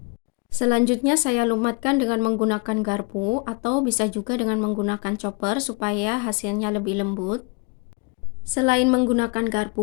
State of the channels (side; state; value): right; quieter; 30.0 dB